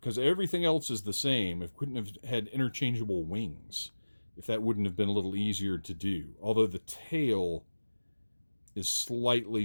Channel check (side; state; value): both; inverted; correlation -1.00